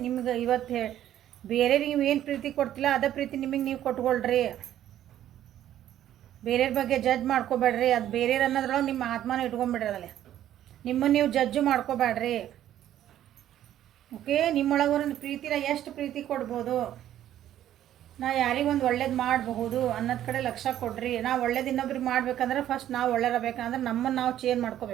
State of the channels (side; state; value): left; quieter; 11.8 dB